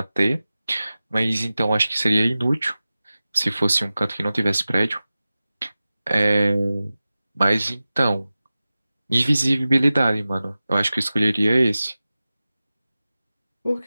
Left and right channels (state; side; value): inverted; both; correlation -0.96